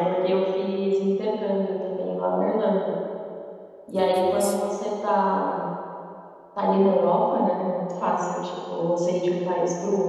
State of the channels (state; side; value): identical; both; correlation 1.00